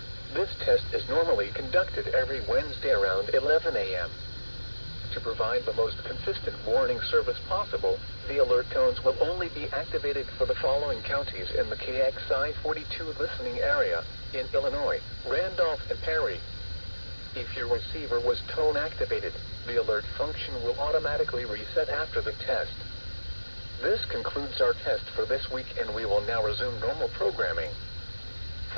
this test is normally conducted every Wednesday around 11 a.m. To provide the most consistent warning service possible, the alert tones will only be activated for the following counties in the KXI42 listening area in Illinois, Randolph, and Perry. If your receiver was tone activated, the alert function will automatically reset after the test. This concludes our test for this week, and we will now resume normal programming.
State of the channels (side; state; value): both; inverted; correlation -1.00